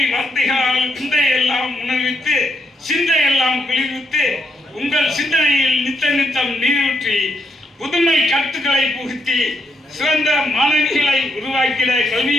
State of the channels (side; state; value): both; normal; correlation 0.77